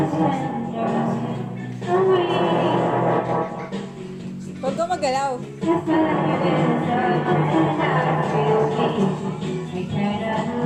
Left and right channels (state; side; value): identical; both; correlation 1.00